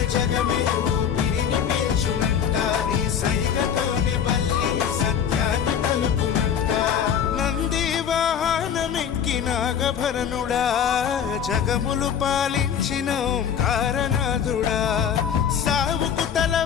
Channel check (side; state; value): right; quieter; 8.2 dB